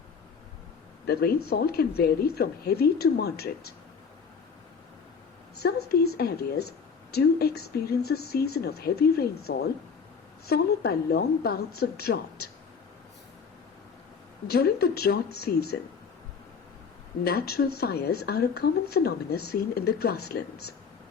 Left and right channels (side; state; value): right; quieter; 5.8 dB